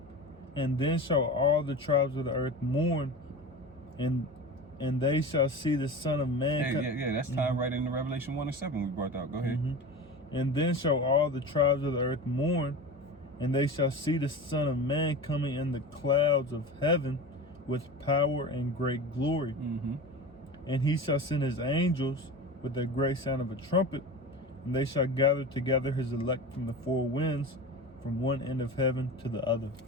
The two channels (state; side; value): normal; both; correlation 0.31